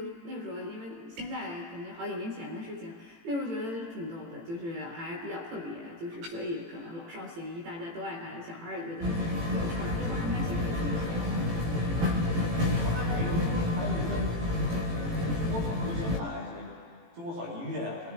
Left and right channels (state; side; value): late; left; 18 ms